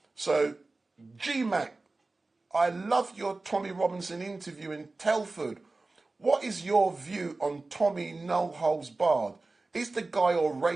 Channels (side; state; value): left; quieter; 3.3 dB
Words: So, G-Mac, I loved your Tommy Robinson interview in Telford. What is your view on Tommy No Holds Barred? Is the guy a